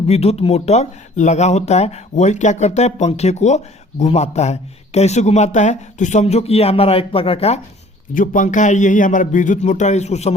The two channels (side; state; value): both; normal; correlation 0.53